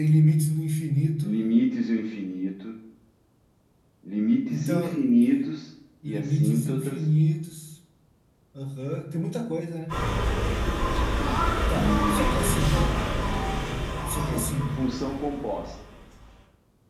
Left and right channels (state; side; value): identical; both; correlation 1.00